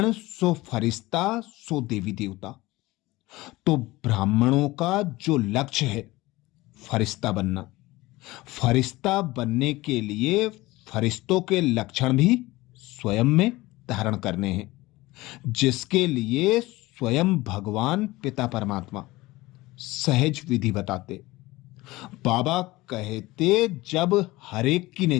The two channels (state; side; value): quieter; right; 19.6 dB